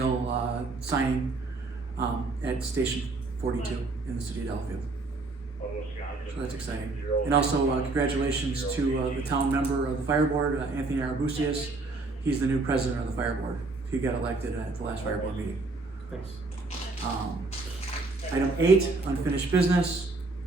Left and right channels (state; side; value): quieter; left; 3.5 dB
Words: signing at Station 42 in the city of Delafield. So that's exciting. And also congratulations to the town member of the fire board, Anthony Arabusius. He's the new president of the fire board. He got elected at the last fire board meeting. Thanks. Item 8, unfinished business.